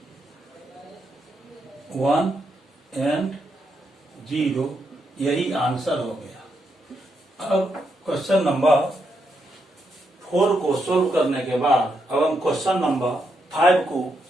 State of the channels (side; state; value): both; normal; correlation 0.81